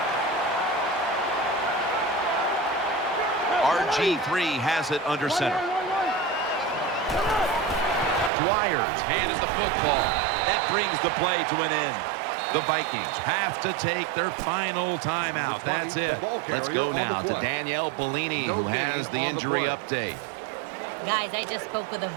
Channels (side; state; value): left; drops out; at 8.3 s